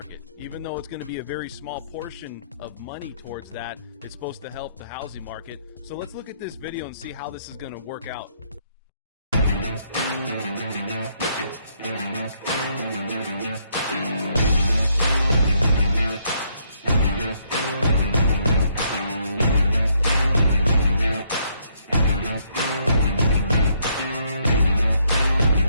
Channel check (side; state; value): both; inverted; correlation -0.71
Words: Even though it's going to be a very small portion of money towards that, it's supposed to help the housing market. So let's look at this video and see how this is going to work out.